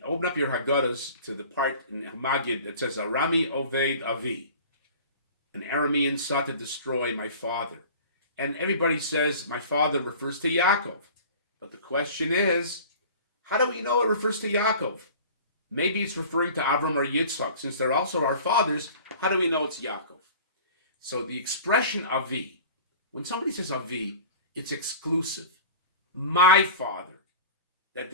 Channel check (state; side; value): inverted; both; correlation -0.41